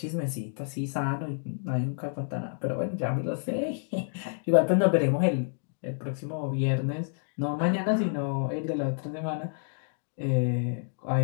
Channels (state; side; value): silent; right; digital silence